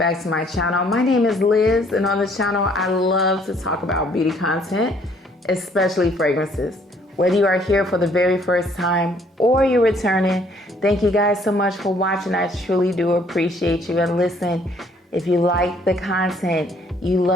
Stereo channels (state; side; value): normal; both; correlation 0.63